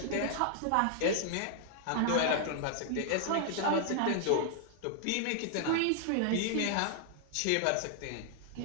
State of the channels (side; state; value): both; different; correlation 0.00